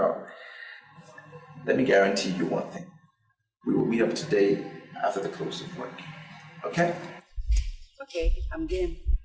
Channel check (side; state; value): both; identical; correlation 1.00